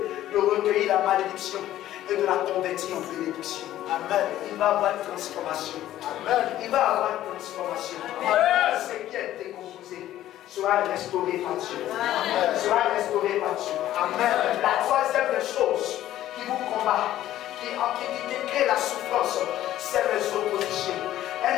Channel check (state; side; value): quieter; right; 13.3 dB